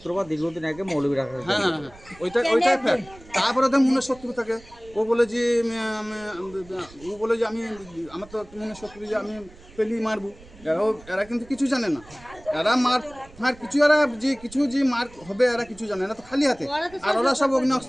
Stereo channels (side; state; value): right; noise; rumble, 22 dB below the sound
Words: দীর্ঘদিন আগে মৌলভীরাকে। হ্যাঁ, ওইটাই ফ্যাক্ট। তারপরে তো মনে শত্রু থাকে, ও বলে যে আমি আমার তো মনে শত্রু যে আমি পেলি মারবো। এরা কিন্তু কিছু জানে না, এরা মার কিছু, এরা যে কিছু যে মার হবে এরা কিছু জানে না, তো খালি হাতে। আর ওরা সব অগ্নি